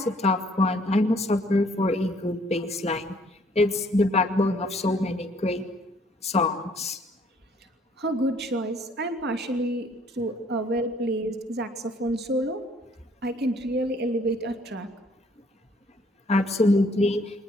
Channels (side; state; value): both; normal; correlation 0.62